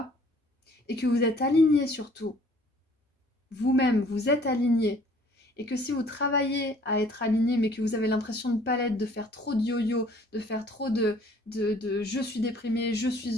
Et que vous êtes aligné surtout. Vous-même, vous êtes aligné. Et que si vous travaillez à être aligné, mais que vous avez l'impression de ne pas l'être, de faire trop de yo-yo, de faire trop de je suis déprimé, je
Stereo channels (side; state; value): both; normal; correlation 0.56